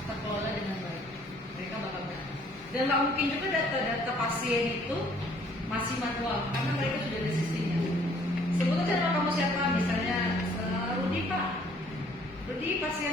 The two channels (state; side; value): normal; both; correlation 0.60